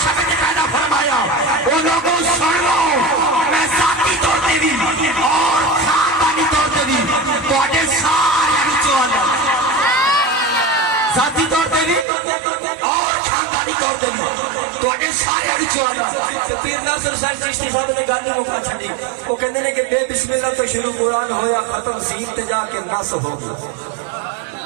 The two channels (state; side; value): drops out; left; at 12.1 s